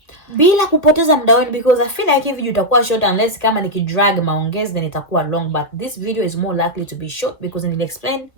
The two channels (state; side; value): late; right; 1.6 ms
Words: bila kupoteza muda wenu, because I feel like if video itakuwa short unless kama nikidrag maongezi then itakuwa long, but this video is more likely to be short because nili explain